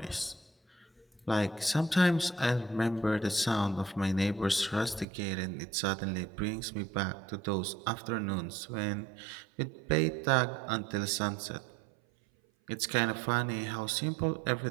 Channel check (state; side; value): drops out; left; at 5.1 s